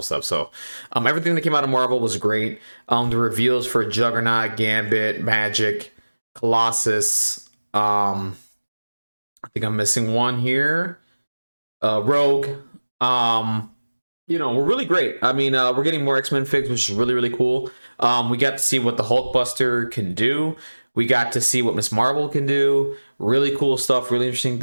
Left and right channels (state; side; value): inverted; both; correlation -1.00